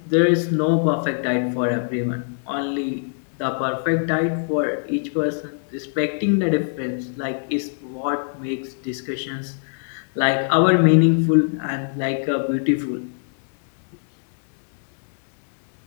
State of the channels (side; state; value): right; silent; 64 dB below the other